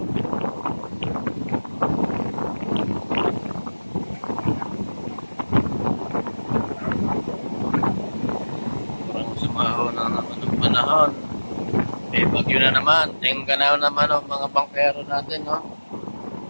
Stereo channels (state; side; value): inverted; both; correlation -1.00